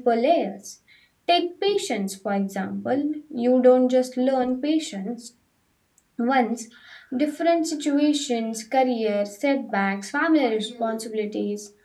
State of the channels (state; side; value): identical; both; correlation 1.00